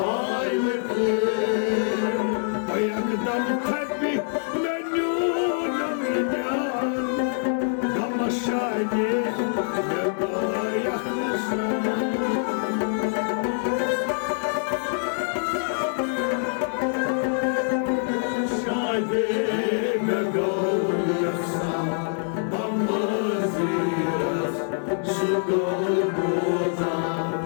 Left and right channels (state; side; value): silent; right; 62 dB below the other